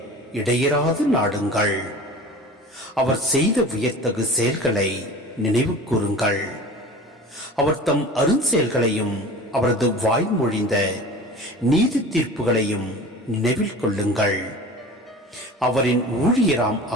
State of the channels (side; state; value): both; normal; correlation 0.37